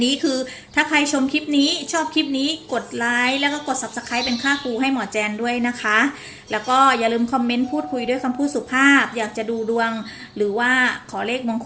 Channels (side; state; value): both; identical; correlation 1.00